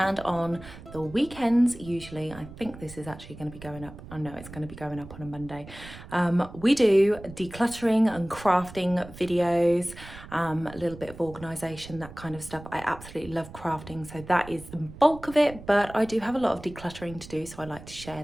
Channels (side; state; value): right; noise; rumble, 16 dB below the sound